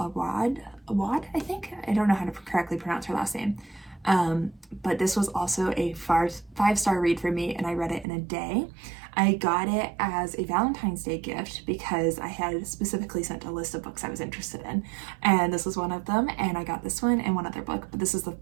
I think? I don't know how to correctly pronounce her last name. But this was also a 5-star read for me, and I read it in a day. I got it as a Valentine's Day gift because I had specifically sent a list of books I was interested in, and this was one of them, and I got this one and one other book, but this is the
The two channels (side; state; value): left; drops out; at 8.1 s